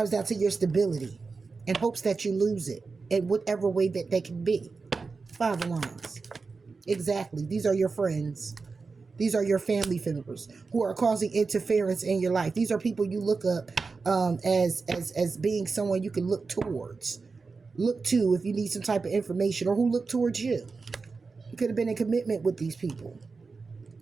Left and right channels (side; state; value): left; quieter; 4.4 dB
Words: down to your stability. In hopes that you lose it. In whatever way that they can be. Five of Wands. Exactly. These are your friends. These are your family members who are causing interference in your life. These are people you look up as being someone you can look towards. Look to if you need some type of information, or who look towards you. You could have been in commitment with these people.